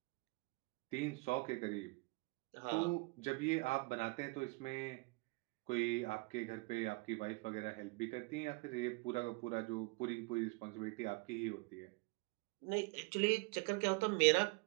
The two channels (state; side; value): quieter; left; 27.3 dB